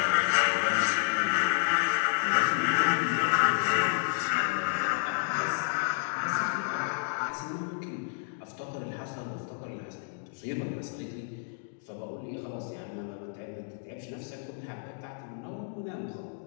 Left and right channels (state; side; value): silent; right; digital silence